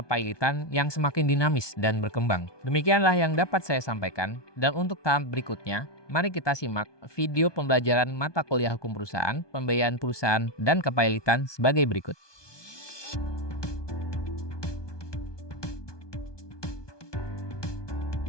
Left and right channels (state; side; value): late; right; 1.2 ms